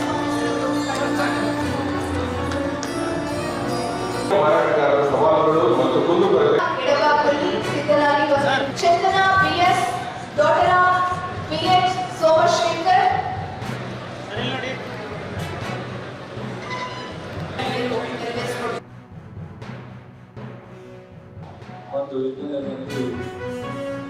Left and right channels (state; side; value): identical; both; correlation 1.00